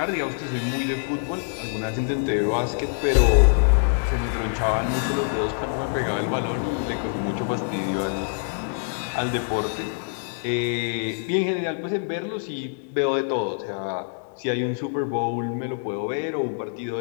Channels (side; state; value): right; silent; digital silence